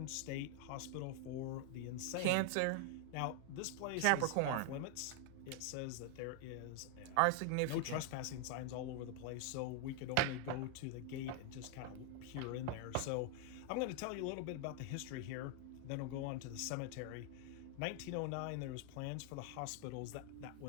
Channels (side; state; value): both; different; correlation 0.00